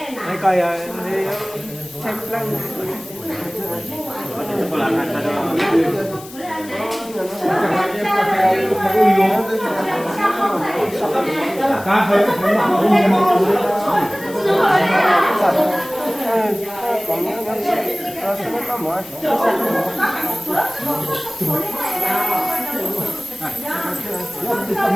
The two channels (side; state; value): left; noise; hiss, 17 dB below the sound